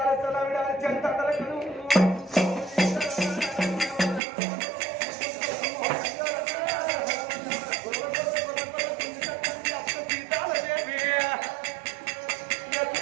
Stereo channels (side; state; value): left; drops out; at 4.2 s